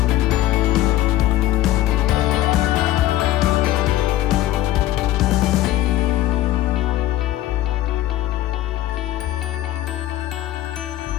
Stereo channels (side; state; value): right; quieter; 14.4 dB